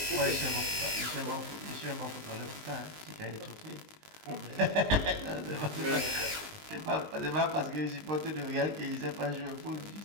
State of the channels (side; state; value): left; late; 19 ms